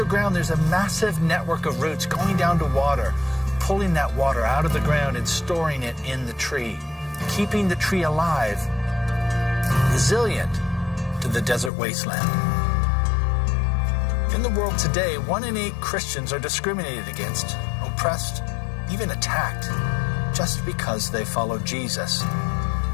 there's a massive network of roots going down to water, pulling that water out of the ground and storing it in the tree, keeping the tree alive, resilient to the desert wasteland. In the world today, 1 in 8 Christians are discriminated against, oppressed, even attacked, just because they follow Jesus.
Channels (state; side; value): drops out; right; at 11.7 s